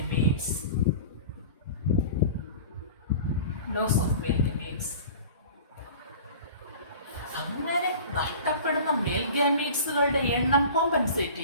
Loss of male gametes. അങ്ങനെ നഷ്ടപ്പെടുന്ന മെയിൽ ഗാമീറ്റ്സുകളുടെ എണ്ണം കോമ്പൻസേറ്റ്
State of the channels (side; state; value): both; inverted; correlation -0.39